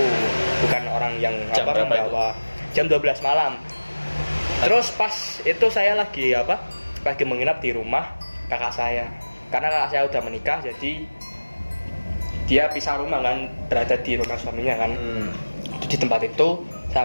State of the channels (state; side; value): inverted; both; correlation -1.00